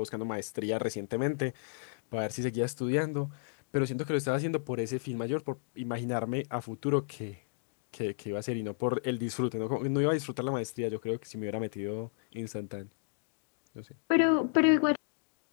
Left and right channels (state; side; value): silent; right; digital silence